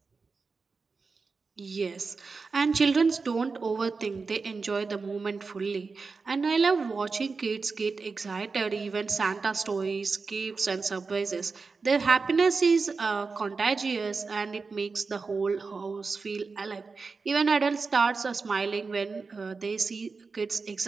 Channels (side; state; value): left; quieter; 4.5 dB